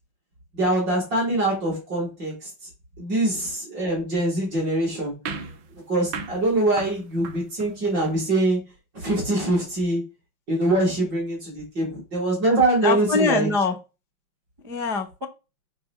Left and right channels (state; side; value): late; left; 5.5 ms